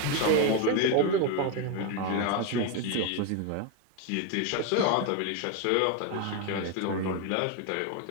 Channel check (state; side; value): different; both; correlation 0.01